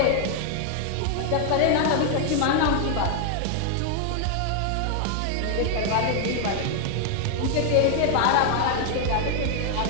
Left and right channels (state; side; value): different; both; correlation 0.00